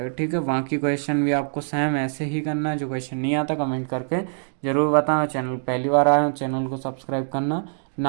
ठीक है, बाकी क्वेश्चन भी आपको सेम ऐसे ही करना है। जो क्वेश्चन नहीं आता कमेंट करके जरूर बताना। चैनल पहली बार आए हो, चैनल को सब्सक्राइब करना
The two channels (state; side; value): silent; left; 63 dB below the other